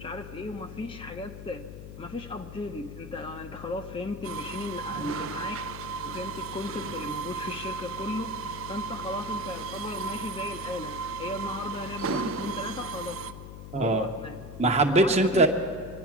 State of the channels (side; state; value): left; noise; hum, 11 dB below the sound